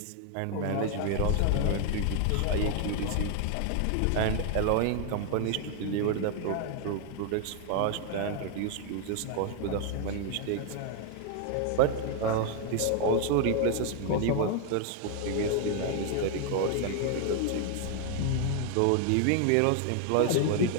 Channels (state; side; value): different; both; correlation 0.00